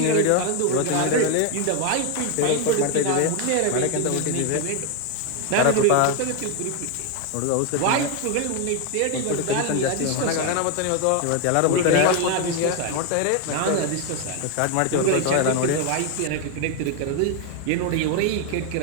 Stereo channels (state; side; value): different; both; correlation 0.01